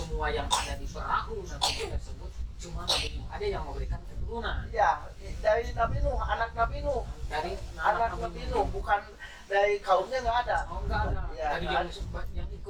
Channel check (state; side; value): identical; both; correlation 1.00